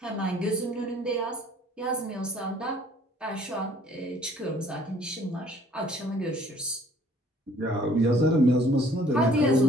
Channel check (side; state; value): both; normal; correlation 0.57